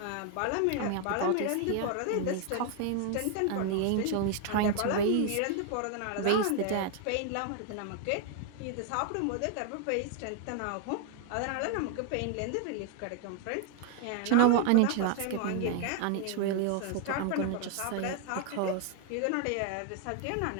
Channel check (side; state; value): both; different; correlation 0.00